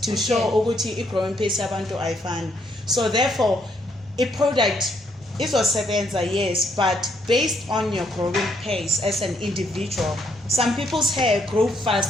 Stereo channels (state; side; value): normal; both; correlation 0.72